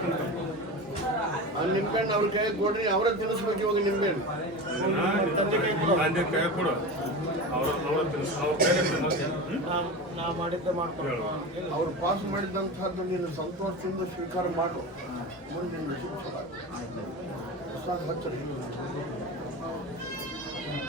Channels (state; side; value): normal; both; correlation 0.27